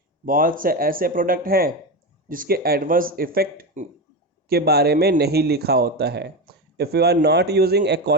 बहुत से ऐसे प्रोडक्ट हैं जिसके एडवर्स इफेक्ट के बारे में नहीं लिखा होता है। If you are not using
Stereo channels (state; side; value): normal; both; correlation 0.17